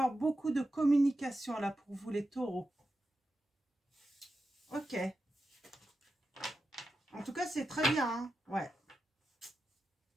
beaucoup de communication là pour vous les taureaux. Ok. En tout cas c'est très bien, hein. Ouais.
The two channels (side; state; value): both; normal; correlation 0.90